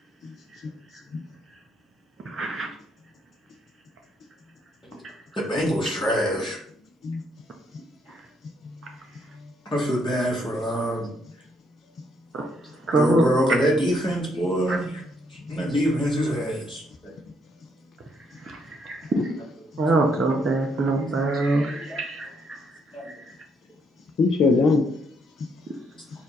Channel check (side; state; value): both; normal; correlation 0.72